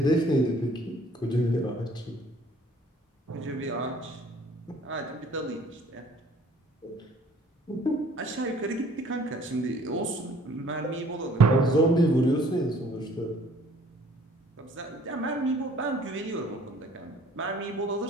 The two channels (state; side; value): normal; both; correlation 0.56